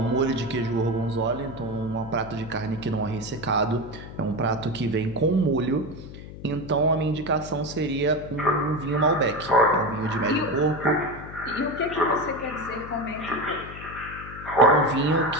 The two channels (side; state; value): left; noise; hum, 13 dB below the sound